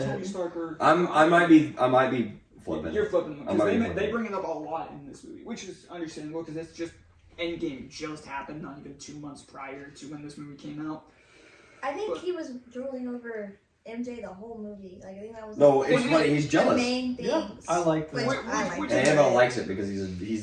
Tony it. Stark or. I might be flipping. You're flipping I because might be they flipping. bring it up a lot in this movie, which is understandable because it's just Endgame just happened, not even 2 months prior to when this movie came out. I think he was drooling over MJ the whole movie. Like I think that was No, like, it's funny. He's the jealous. main things. Yeah, I like Which that. I like. Which- And Annabelle likes it because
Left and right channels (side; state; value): both; identical; correlation 1.00